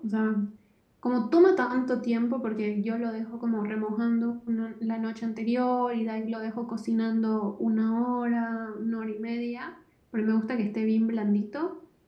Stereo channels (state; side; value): identical; both; correlation 1.00